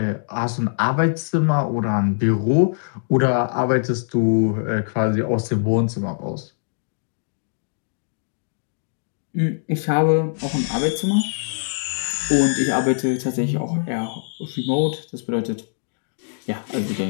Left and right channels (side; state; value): right; silent; digital silence